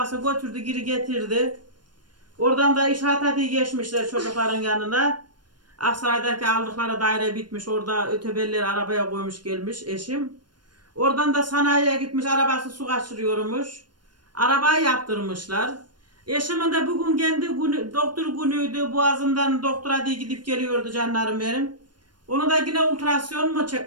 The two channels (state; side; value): late; left; 0.71 ms